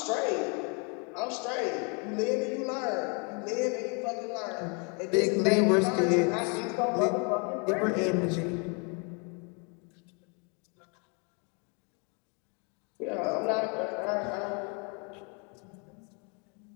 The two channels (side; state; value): right; quieter; 35.3 dB